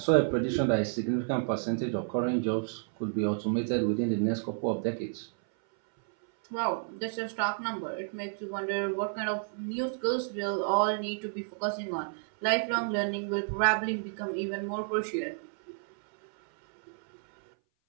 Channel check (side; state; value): left; silent; 57 dB below the other